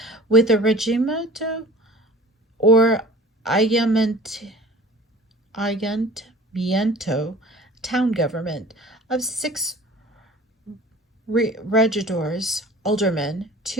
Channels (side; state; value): both; normal; correlation 0.45